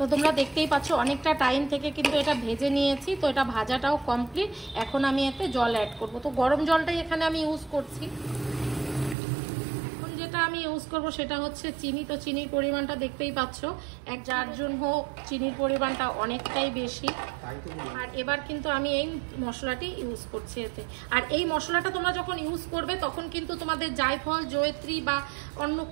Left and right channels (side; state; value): left; drops out; at 9.2 s